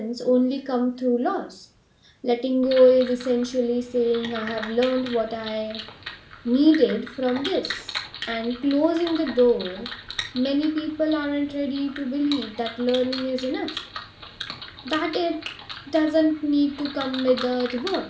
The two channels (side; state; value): both; identical; correlation 1.00